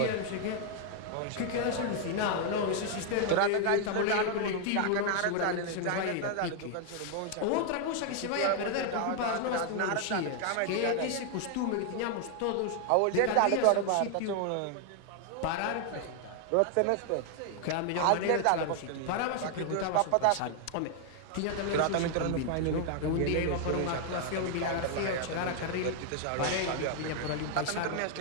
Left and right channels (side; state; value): both; different; correlation 0.00